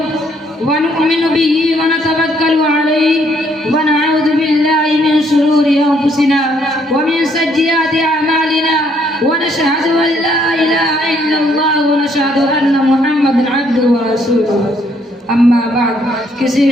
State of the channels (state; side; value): normal; both; correlation 0.68